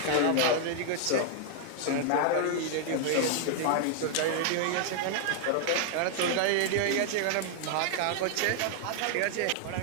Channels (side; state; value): both; different; correlation 0.00